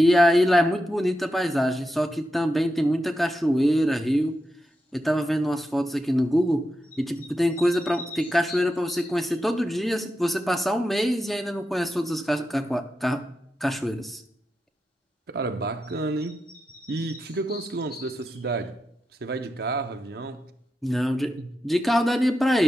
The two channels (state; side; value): normal; both; correlation 0.88